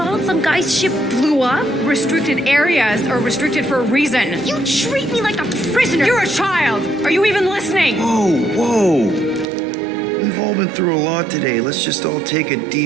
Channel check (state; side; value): drops out; left; at 9.5 s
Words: some guy's ship blew up. Restricted areas are restricted for a reason. You treat me like a prisoner. You're a child! Are you even listening? Whoa. We've all been through a lot today. Let's just all take a